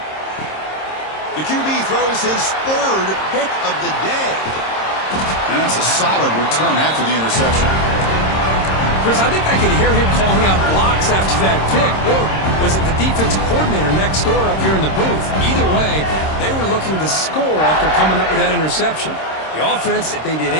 The QB throws his 3rd pick of the day. And that's a solid return after the interception. Chris, I think I could hear him calling out blocks after that pick. Or was it the defensive coordinator next door up here in the booth? Either way, they were looking to score after coming up with that interception. The offense, if they did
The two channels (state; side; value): late; right; 26 ms